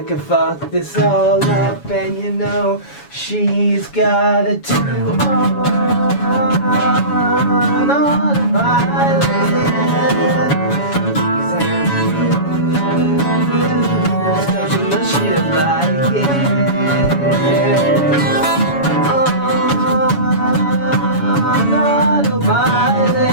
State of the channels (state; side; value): late; right; 7.1 ms